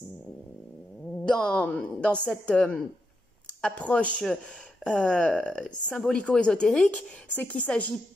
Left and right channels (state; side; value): normal; both; correlation 0.84